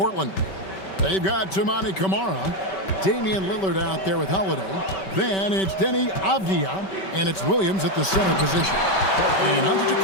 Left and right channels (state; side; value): late; right; 5.2 ms